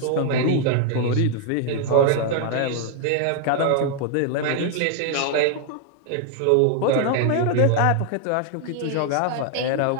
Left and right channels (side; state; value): both; different; correlation 0.00